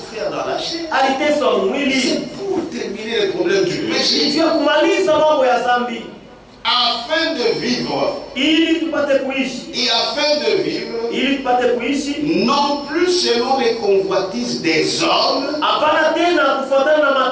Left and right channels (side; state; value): both; identical; correlation 1.00